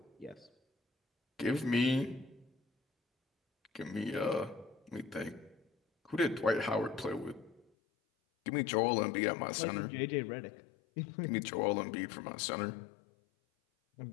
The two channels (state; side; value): drops out; right; at 7.7 s